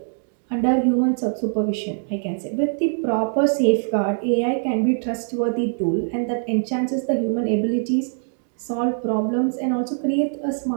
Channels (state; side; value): silent; left; 64 dB below the other